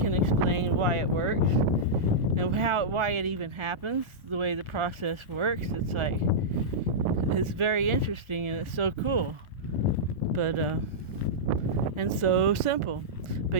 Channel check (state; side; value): late; left; 1.4 ms